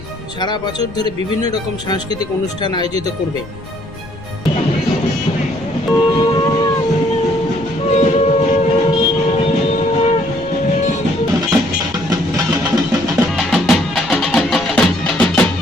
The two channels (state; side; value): noise; left; rumble, 18 dB below the sound